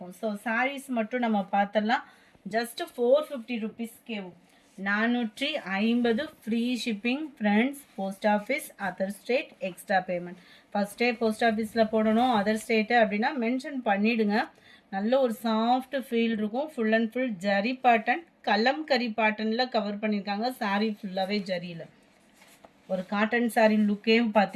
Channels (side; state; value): both; identical; correlation 1.00